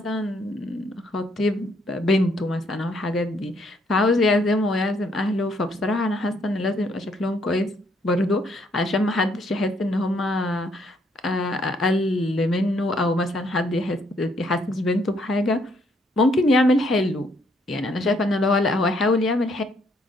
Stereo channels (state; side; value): normal; both; correlation 0.70